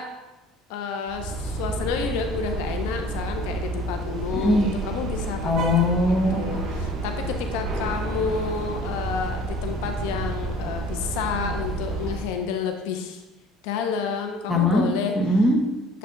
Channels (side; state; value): both; normal; correlation 0.48